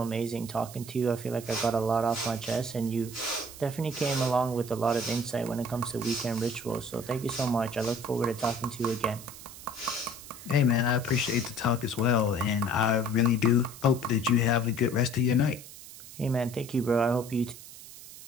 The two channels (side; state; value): right; noise; hiss, 15 dB below the sound